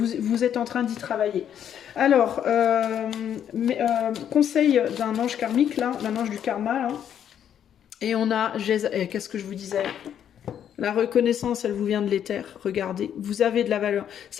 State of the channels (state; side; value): quieter; right; 9.4 dB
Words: êtes en train d'y travailler. Alors, conseil d'un ange karmique, là, d'un ange du karma, là. Et on a, qu'est-ce que je vous disais? La reconnaissance, elle vous vient de l'éther. Regardez, vous avez de la valeur.